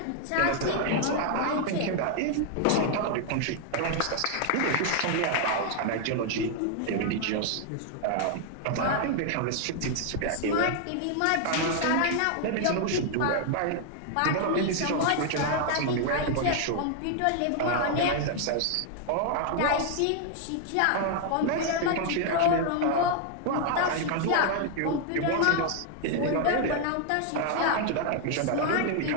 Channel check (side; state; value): both; different; correlation 0.00